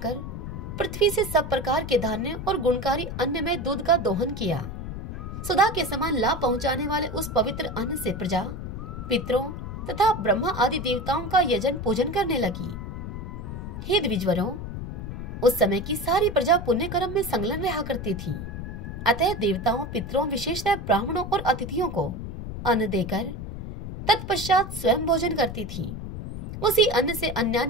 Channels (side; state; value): left; noise; rumble, 7 dB below the sound